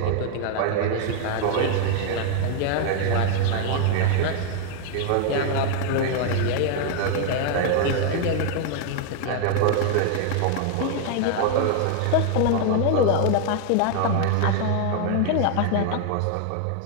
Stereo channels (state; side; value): different; both; correlation 0.00